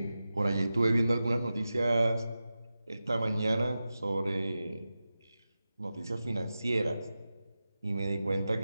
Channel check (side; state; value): both; inverted; correlation -0.93